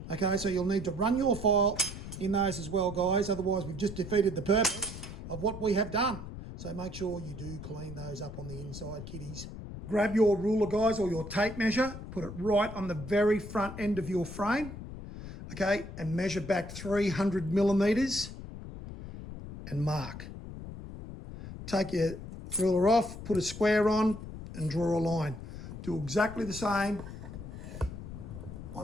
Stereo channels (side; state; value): left; noise; rumble, 10 dB below the sound